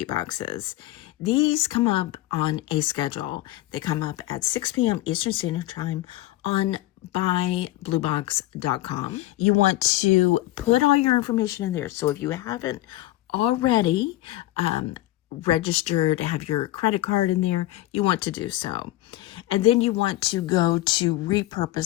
boxes. These come up on a schedule. They come up at 6 p.m. Eastern Standard Time on buybluebox.com. You want to put all your information in there. So if you haven't already registered, have your credit card in there, you want to do so. And then you want to go to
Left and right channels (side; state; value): right; quieter; 16.3 dB